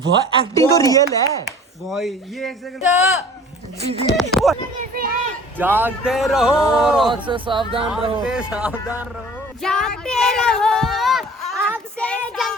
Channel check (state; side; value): normal; both; correlation 0.46